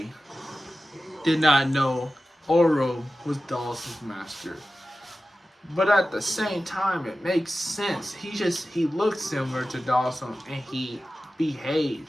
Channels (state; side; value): normal; both; correlation 0.94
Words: did not know Oro was Dawson's master. But at the same time, it makes sense. He looked similar to Dawson, and he behaved.